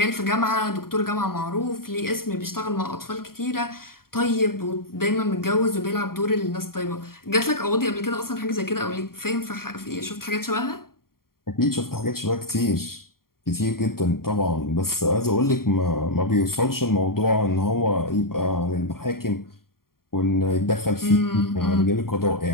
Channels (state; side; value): late; right; 0.93 ms